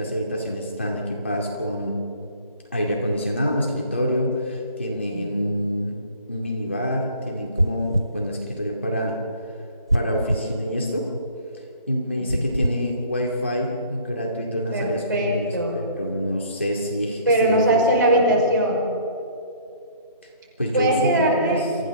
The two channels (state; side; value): inverted; both; correlation -0.53